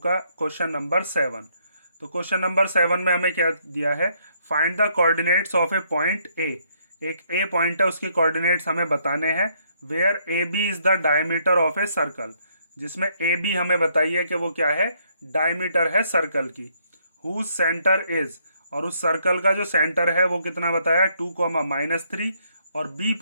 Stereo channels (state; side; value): inverted; both; correlation -0.71